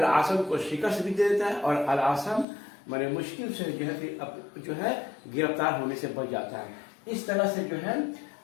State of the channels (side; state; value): right; drops out; at 2.5 s